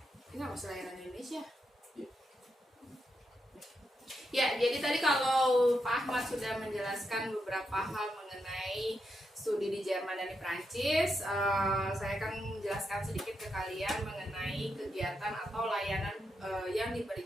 Ini nggak masalah Indonesia. Ya, jadi tadi kalau Pak Ahmad sudah menjelaskan beberapa hal mengenai studi di Jerman dan di Prancis, saya akan menjelaskan sedikit ke kalian mengenai kegiatan atau layanan yang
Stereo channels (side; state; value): both; normal; correlation 0.83